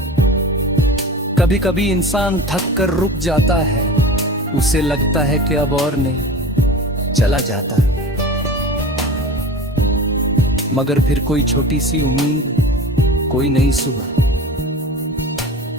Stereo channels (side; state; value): both; normal; correlation 0.35